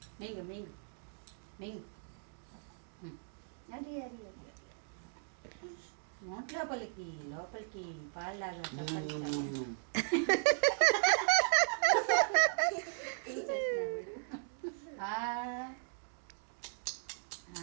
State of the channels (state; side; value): silent; left; digital silence